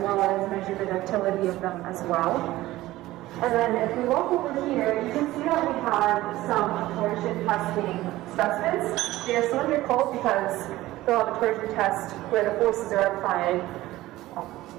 as measure the ductility of them as well. And then if we walk over here, you can see that we have some torsion testing specimens. They are cylindrical because they'll have a torsion test where the forces are applied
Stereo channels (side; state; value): left; quieter; 16.7 dB